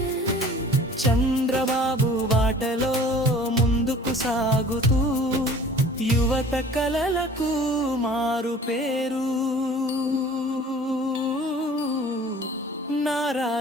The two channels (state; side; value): normal; both; correlation 0.47